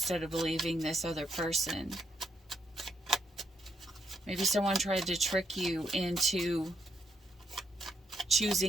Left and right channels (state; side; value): normal; both; correlation 0.76